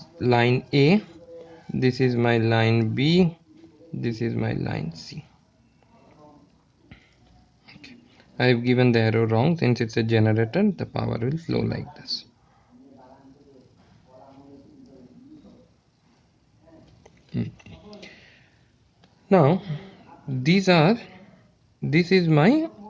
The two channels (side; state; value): both; identical; correlation 1.00